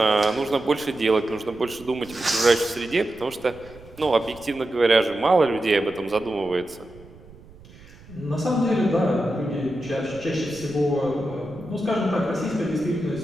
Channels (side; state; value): right; noise; rumble, 22 dB below the sound